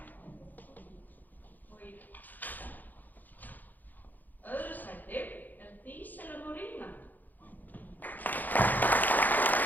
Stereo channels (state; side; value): late; right; 0.085 ms